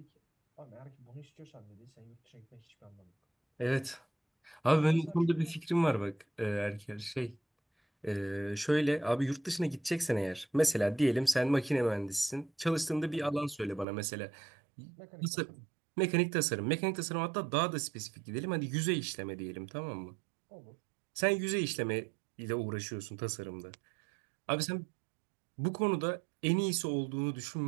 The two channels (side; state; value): left; drops out; at 13.9 s